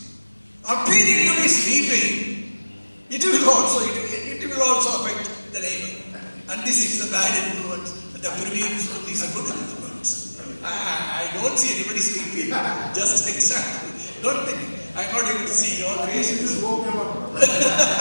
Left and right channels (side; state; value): both; inverted; correlation -1.00